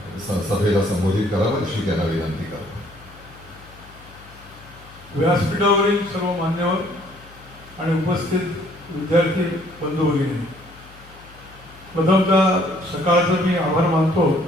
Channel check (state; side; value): noise; left; hum, 22 dB below the sound